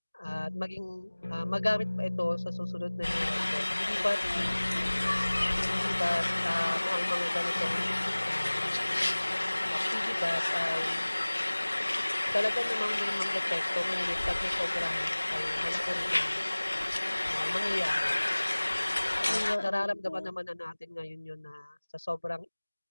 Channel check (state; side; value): inverted; both; correlation -1.00